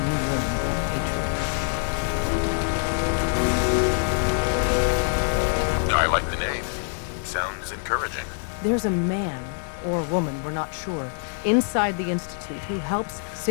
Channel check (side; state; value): right; silent; digital silence